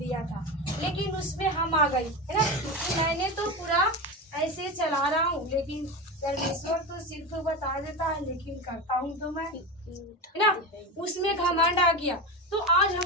था। लेकिन उसमें हम आ गई, है ना, कि मैंने तो पूरा ऐसे चला रहा हूँ, लेकिन परमेश्वर तो सिर्फ बता देता है, लेकिन करता हूँ तो मैं, है ना। उसमें घमंड आ गया। तो आज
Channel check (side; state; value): both; normal; correlation 0.21